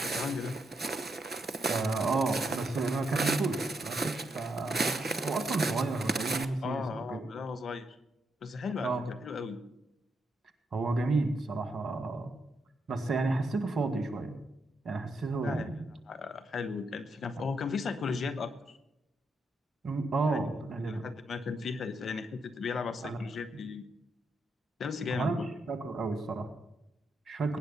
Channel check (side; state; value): both; normal; correlation 0.80